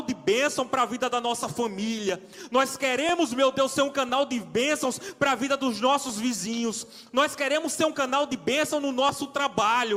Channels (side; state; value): both; identical; correlation 1.00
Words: de bênção para a vida da nossa família. Nós queremos, meu Deus, ser um canal de bênçãos para a vida dos nossos vizinhos. Nós queremos ser um canal de bênção no nosso